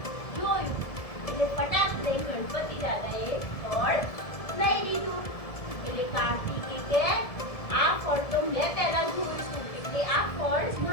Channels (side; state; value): right; late; 1.7 ms